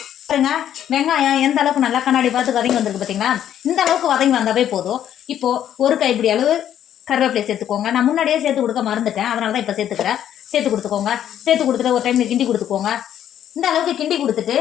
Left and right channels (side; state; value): right; quieter; 10.5 dB